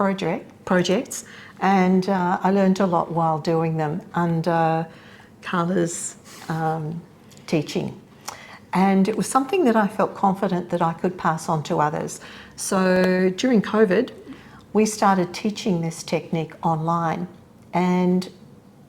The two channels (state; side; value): identical; both; correlation 1.00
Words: and I learned a lot while doing them under Carla's teaching. And it was something that I felt confident that I could pass on to others. So during COVID, we started teaching this technique online, and